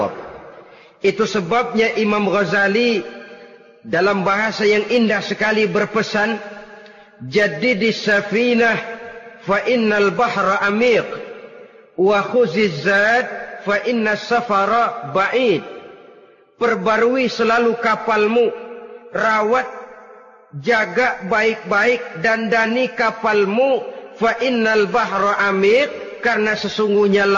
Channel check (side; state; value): both; identical; correlation 1.00